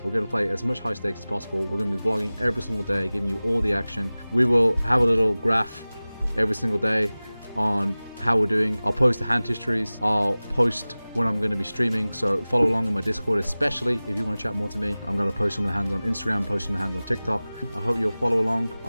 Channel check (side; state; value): both; inverted; correlation -0.98